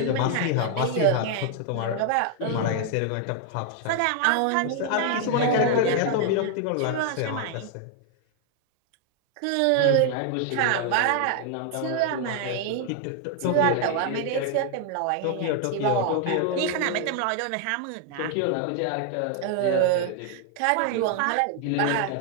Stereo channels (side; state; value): both; different; correlation 0.00